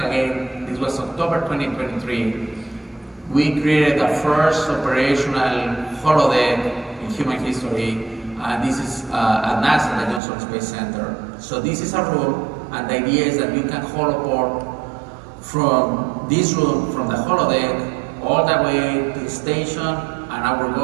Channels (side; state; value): left; drops out; at 10.2 s